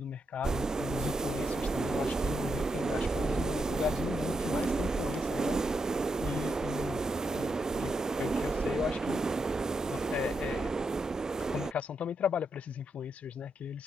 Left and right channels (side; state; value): both; normal; correlation 0.82